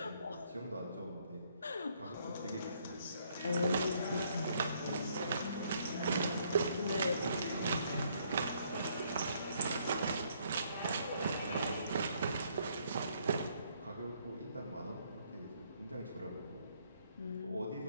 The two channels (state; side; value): inverted; both; correlation -0.68